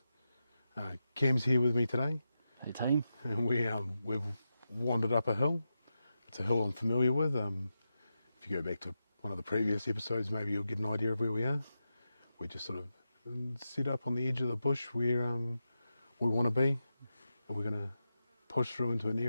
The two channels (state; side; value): inverted; both; correlation -0.90